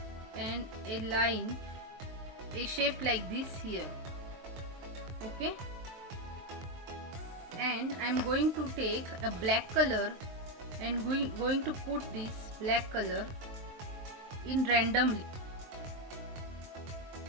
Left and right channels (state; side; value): late; left; 23 ms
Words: and a shape like this here. Okay, and I'm going to take a black color and going to put this black color in randomly.